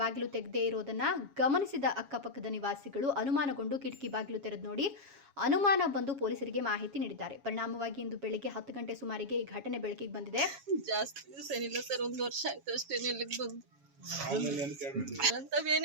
ಬಾಗಿಲು ತೆಗೆದೇ ಇರೋದನ್ನ ಗಮನಿಸಿದ ಅಕ್ಕಪಕ್ಕದ ನಿವಾಸಿಗಳು ಅನುಮಾನಗೊಂಡು ಕಿಟಕಿ ಬಾಗಿಲು ತೆರೆದು ನೋಡಿ ಅನುಮಾನ ಬಂದು ಪೊಲೀಸರಿಗೆ ಮಾಹಿತಿ ನೀಡಿದ್ದಾರೆ. ಪರಿಣಾಮವಾಗಿ ಇಂದು ಬೆಳಿಗ್ಗೆ 10 ಗಂಟೆ ಸುಮಾರಿಗೆ ಈ ಘಟನೆ ಬೆಳಕಿಗೆ ಬಂದಿದೆ. ಜಾಸ್ತಿ ದಿವಸ ಏನಿಲ್ಲ ಸರ್, 1 ವರ್ಷ ಆಯ್ತು ಅಷ್ಟೇ ಇಲ್ಲಿಗೆ ಬಂದು.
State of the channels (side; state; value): left; late; 7.3 ms